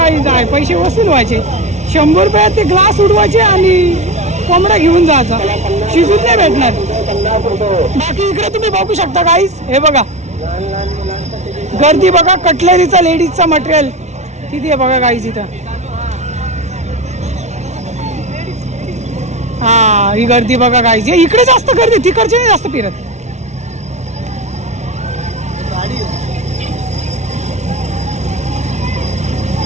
आहे. पैसे वसूल व्हायचे. 100 रुपयात ते ग्लास उडवायचे आणि कोंबडा घेऊन जायचा. शिजून नाही भेटणार. बाकी इकडे तुम्ही बघू शकता गाईज. हे बघा गर्दी बघा. कटलरीचा लेडीजचा मटेरियल किती आहे बघा गाईज इथं. हा ही गर्दी बघा गाईज. इकडे जास्त गर्दी तिकडचे नाही जास्त फिरत.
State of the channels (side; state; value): left; late; 0.32 ms